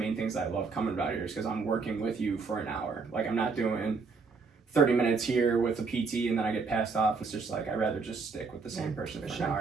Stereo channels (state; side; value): quieter; left; 4.6 dB